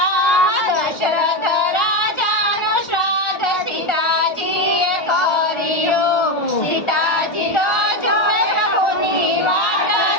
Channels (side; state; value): right; late; 1.4 ms